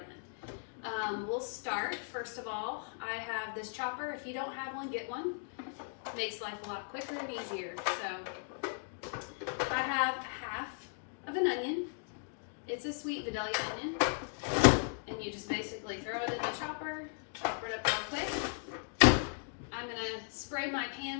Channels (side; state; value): right; silent; 53 dB below the other